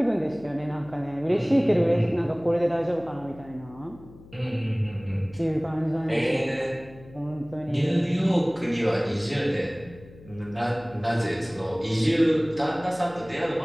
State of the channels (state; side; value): noise; left; hum, 21 dB below the sound